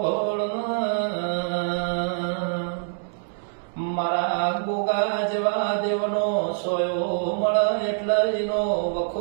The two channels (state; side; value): silent; left; digital silence